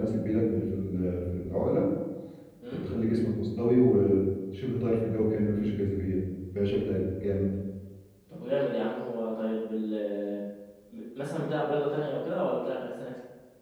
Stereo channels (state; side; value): identical; both; correlation 1.00